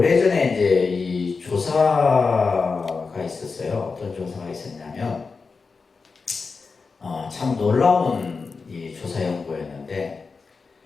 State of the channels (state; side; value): quieter; right; 4.6 dB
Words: 이제 이 조사가 있었어요. 어떤 조사가 있었냐면, 참 놀라운 이 조사 연구였는데,